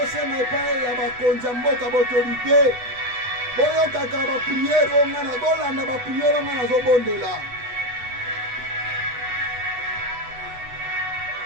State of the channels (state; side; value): late; left; 8.1 ms